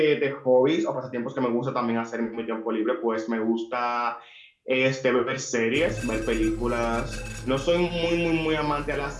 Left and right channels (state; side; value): identical; both; correlation 1.00